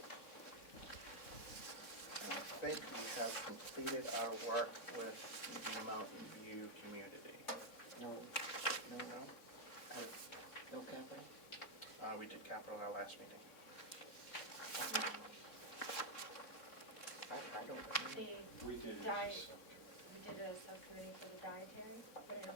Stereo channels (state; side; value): late; right; 3.6 ms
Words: I think we have completed our work with the Mountain View community. No, No? no capital? We did capital our last meeting. I don't remember. We did it. Diet. We did a subcommittee for the dietary, but I